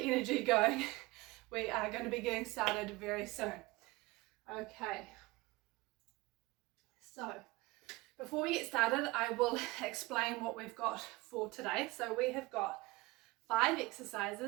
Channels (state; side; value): quieter; left; 21.7 dB